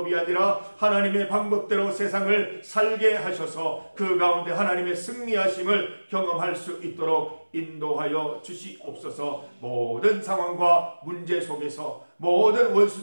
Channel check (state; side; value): inverted; both; correlation -1.00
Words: 아니라 하나님의 방법대로 세상을 살게 하셔서 그 가운데 하나님의 승리하심을 경험할 수 있도록 인도하여 주시옵소서. 모든 상황과 문제 속에서 모든